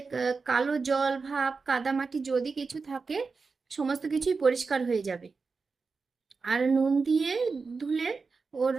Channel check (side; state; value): left; quieter; 4.6 dB